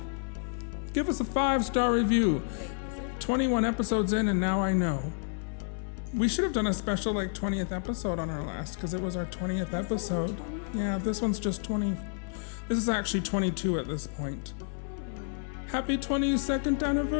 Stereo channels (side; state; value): right; silent; digital silence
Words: Give us a 5-star review. Wait, is it? 21 episodes in and now I know. We should have done a special 20th episode on our last because it was our 20th episode. Yeah, this one's just 20. This is actually 22 at this point. Happy 22nd